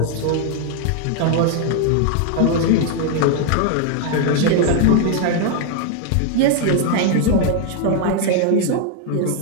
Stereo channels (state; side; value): different; both; correlation 0.01